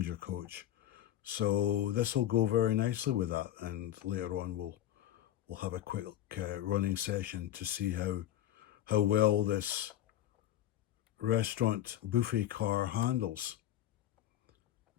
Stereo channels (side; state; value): right; quieter; 12.2 dB